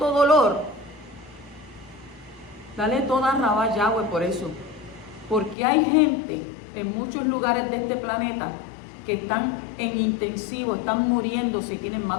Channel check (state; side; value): drops out; right; at 5.6 s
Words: dolor, dale toda rabá Yahweh por eso. Porque hay gente en muchos lugares de este planeta que están en intensivo, están muriéndose y tienen